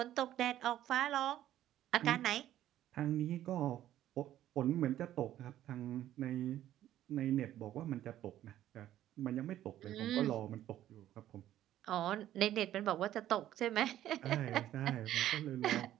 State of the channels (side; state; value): left; quieter; 12.6 dB